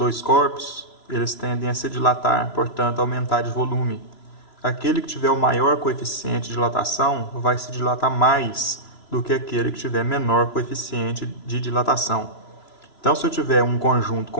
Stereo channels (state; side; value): late; right; 3.0 ms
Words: corpos, eles tendem a se dilatar, portanto, aumentar de volume. Aquele que tiver o maior coeficiente de dilatação vai se dilatar mais do que aquele que tiver menor coeficiente de dilatação. Então, se eu tiver um conjunto